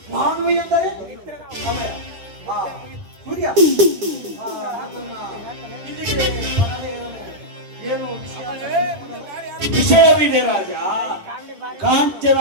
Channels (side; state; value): left; late; 9.7 ms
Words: ನಾನು ಎಂದರೆ ಸಮಯ. ಸೂರ್ಯ ಇಲ್ಲಿಗೆ ಏನು ವಿಷಯವಿದೆ ರಾಜ.